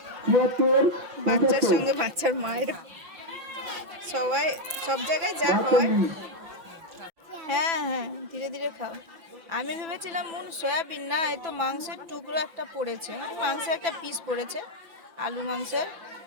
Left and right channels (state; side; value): late; left; 6.0 ms